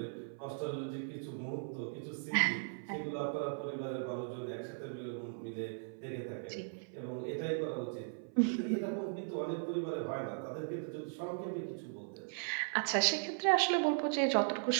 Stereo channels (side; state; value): left; silent; 53 dB below the other